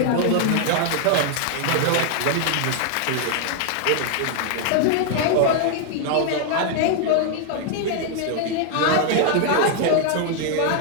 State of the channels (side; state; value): both; different; correlation 0.00